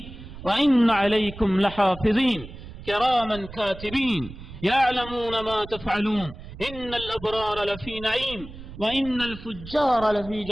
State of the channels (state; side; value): noise; right; rumble, 14 dB below the sound